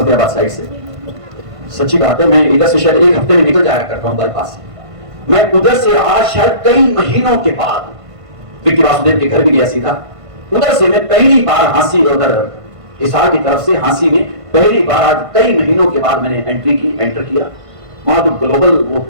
साइड से, सच्ची बात है मैं इधर से शायद एक हफ्ते में निकल जाया करता हूँ बाईपास से। मैं उधर से आज शायद कई महीनों के बाद विक्की वासुदेव के घर भी गया सीधा। उधर से मैं पहली बार हांसी, उधर हिसार की तरफ से हांसी में पहली बार आज कई महीनों के बाद मैंने एंटर किया। वहां जो ग्लोबल वो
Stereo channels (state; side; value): late; left; 1.5 ms